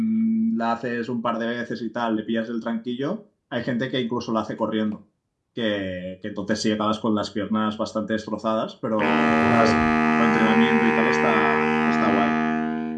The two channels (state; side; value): identical; both; correlation 1.00